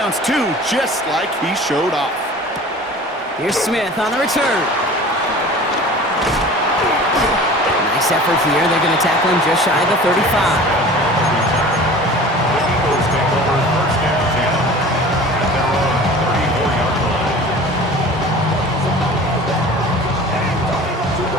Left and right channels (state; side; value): normal; both; correlation 0.41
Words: too, just like he showed off. Here's Smith on the return. Nice effort here. They're going to tackle him just shy of the 35.